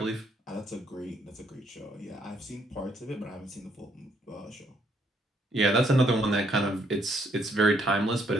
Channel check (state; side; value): normal; both; correlation 0.70